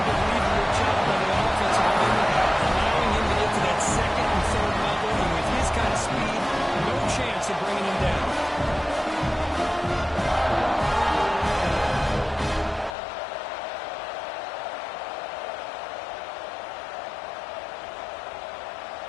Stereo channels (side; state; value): right; drops out; at 13.0 s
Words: job by the offensive lineman, allowing him to get to that second and third level. And with his kind of speed, no chance of bringing him down.